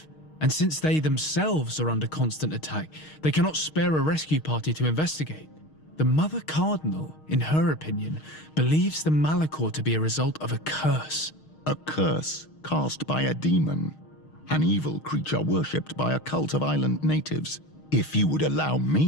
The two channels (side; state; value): right; late; 6.4 ms